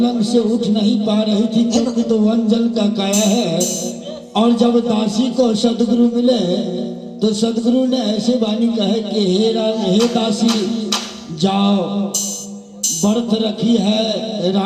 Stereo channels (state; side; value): identical; both; correlation 1.00